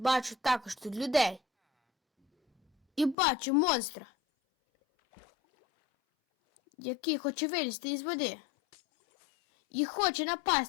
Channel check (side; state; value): right; drops out; at 3.2 s